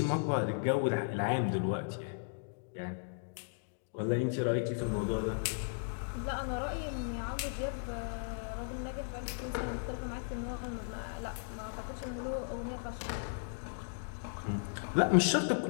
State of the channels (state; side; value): silent; right; digital silence